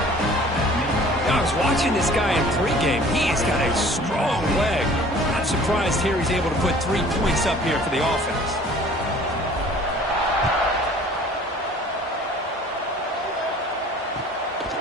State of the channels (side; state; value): both; normal; correlation 0.50